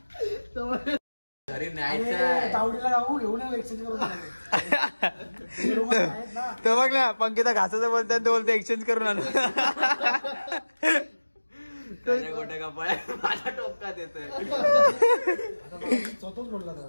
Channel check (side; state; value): both; inverted; correlation -1.00